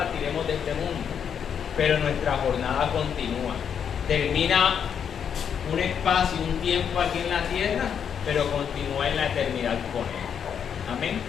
de este mundo. Pero nuestra jornada continúa. Termina un espacio, un tiempo aquí en la tierra, pero continúa en la eternidad con Él. Amén.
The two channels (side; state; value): right; quieter; 7.8 dB